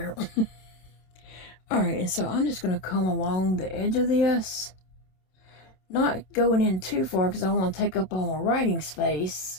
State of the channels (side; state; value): right; late; 27 ms